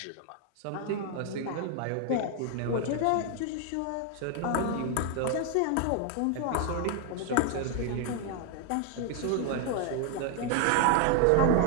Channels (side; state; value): both; different; correlation 0.00